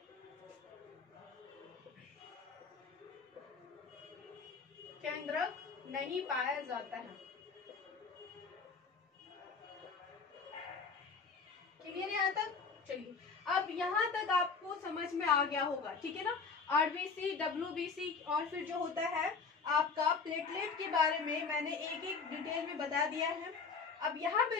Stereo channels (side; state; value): right; quieter; 5.0 dB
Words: केंद्रक नहीं पाया जाता है, क्लियर है यहाँ तक। चलिए अब यहाँ तक आपको समझ में आ गया होगा, ठीक है ना। आरबीसी, डब्ल्यूबीसी और फिर जो होता है आपका प्लेटलेट के बारे में मैंने एक एक डिटेल में बता दिया है। अब यहाँ